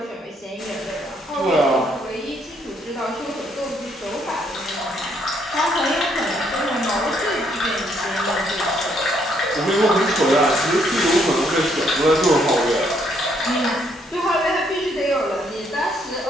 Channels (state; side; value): normal; both; correlation 0.70